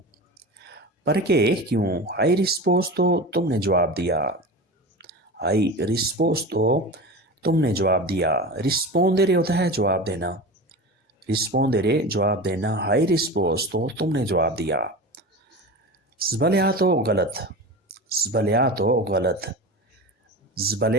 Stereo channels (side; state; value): both; normal; correlation 0.29